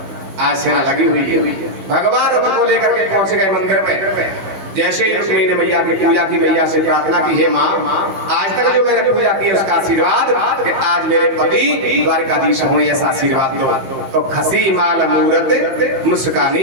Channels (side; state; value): left; late; 15 ms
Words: आज सेना लगी हुई है। भगवान रथ को लेकर के पहुंच गए मंदिर में। जैसे ही रुक्मिणी ने मैया की पूजा की, मैया से प्रार्थना की, हे माँ आज तक जो मैंने पूजा की उसका आशीर्वाद कि आज मेरे पति द्वारकाधीश हों, ऐसा आशीर्वाद दो। तो खसी माल मूरत